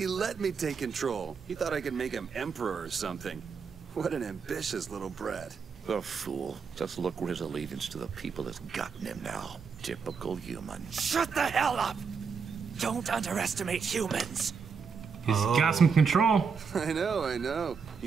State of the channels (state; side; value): quieter; left; 5.8 dB